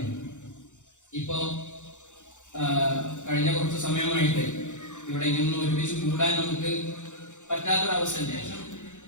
ഇപ്പോ കഴിഞ്ഞ കുറച്ച് സമയമായിട്ട് ഇവിടെ ഇങ്ങനെ ഒരുമിച്ച് കൂടാൻ നമുക്ക് പറ്റാത്തൊരവസ്ഥ. ശേഷം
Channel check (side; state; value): right; late; 0.85 ms